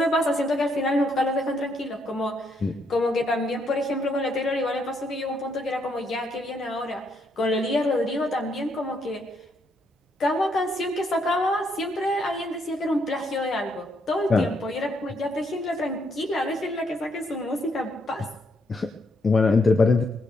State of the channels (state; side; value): normal; both; correlation 0.74